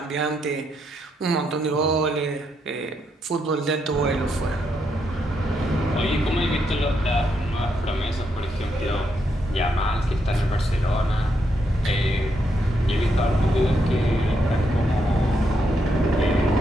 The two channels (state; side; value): normal; both; correlation 0.79